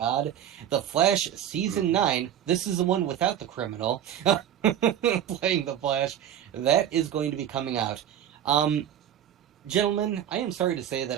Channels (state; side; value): quieter; left; 10.2 dB